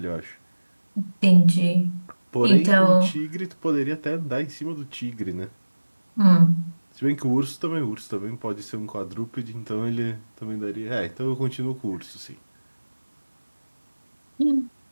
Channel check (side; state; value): both; inverted; correlation -1.00